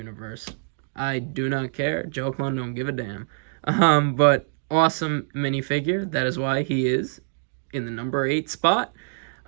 I do not care. Joe Clone don't give a damn. But awesome minifigure. That is why he is in the number 8 spot.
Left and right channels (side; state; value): left; silent; digital silence